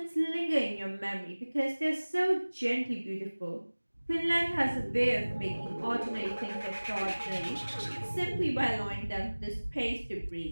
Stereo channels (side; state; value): both; inverted; correlation -1.00